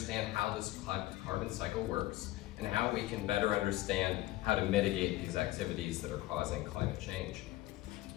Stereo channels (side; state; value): right; quieter; 17.1 dB